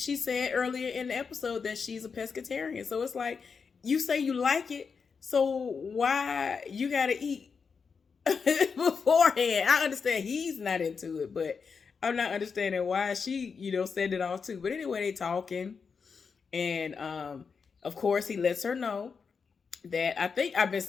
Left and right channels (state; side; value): quieter; right; 5.6 dB